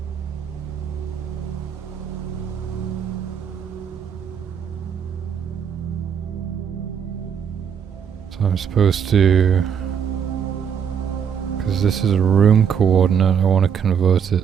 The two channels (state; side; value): quieter; left; 7.7 dB